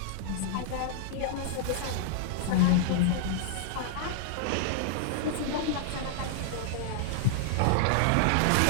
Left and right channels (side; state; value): both; different; correlation -0.01